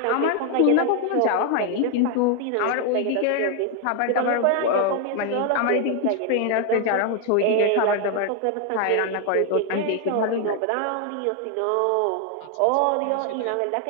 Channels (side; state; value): both; different; correlation 0.01